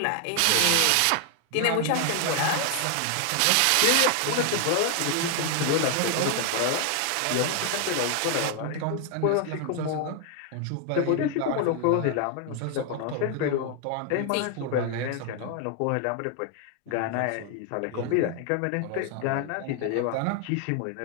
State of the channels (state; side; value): different; both; correlation 0.00